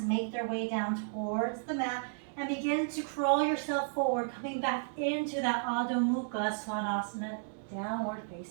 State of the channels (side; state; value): left; silent; digital silence